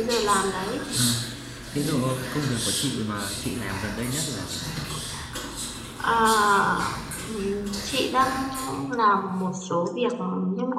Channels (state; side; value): identical; both; correlation 1.00